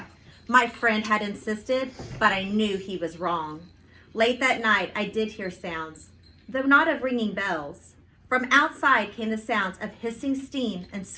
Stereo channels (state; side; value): identical; both; correlation 1.00